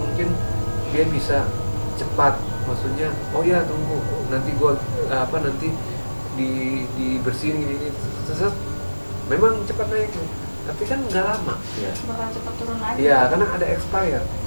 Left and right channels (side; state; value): both; inverted; correlation -1.00